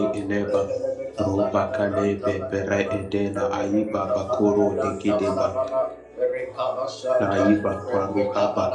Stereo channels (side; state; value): both; identical; correlation 1.00